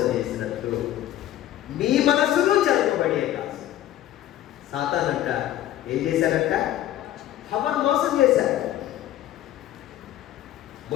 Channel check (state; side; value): quieter; right; 12.9 dB